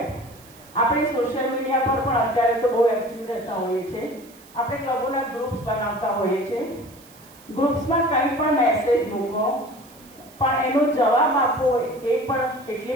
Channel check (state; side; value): noise; right; hiss, 24 dB below the sound